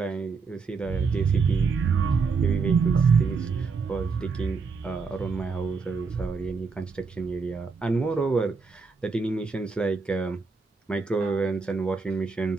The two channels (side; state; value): left; quieter; 4.8 dB